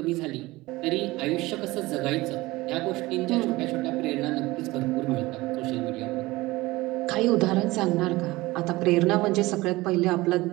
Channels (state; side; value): quieter; left; 20.0 dB